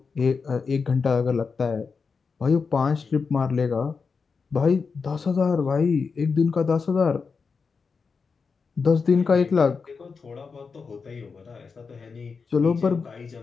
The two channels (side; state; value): right; quieter; 5.1 dB